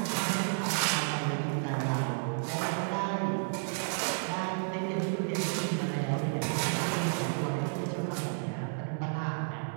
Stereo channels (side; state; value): left; silent; 57 dB below the other